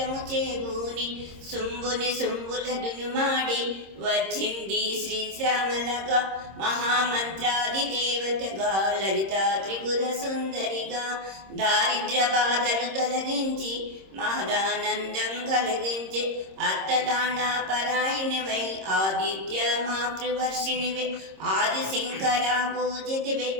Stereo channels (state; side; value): late; left; 26 ms